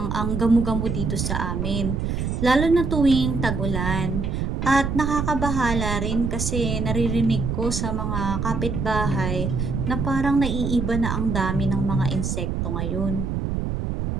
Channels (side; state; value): right; noise; rumble, 1 dB below the sound